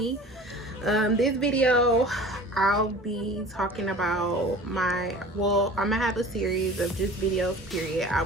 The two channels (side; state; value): both; normal; correlation 0.41